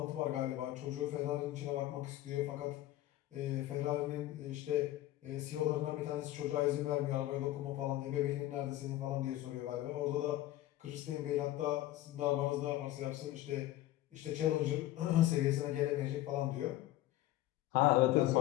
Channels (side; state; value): right; quieter; 14.9 dB